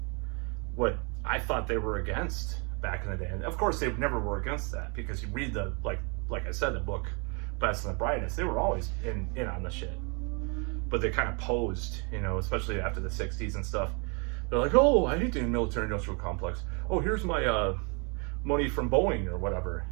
what I thought they were against back in the day. And of course, they never were against that, because you read the like I said, the book Best and the Brightest. They were always in on the shit, but they kind of posed, especially after the '60s and stuff. They're like, oh, I hate the military industrial complex. Oh, here's my money from Boeing or whatever,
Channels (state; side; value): quieter; left; 33.8 dB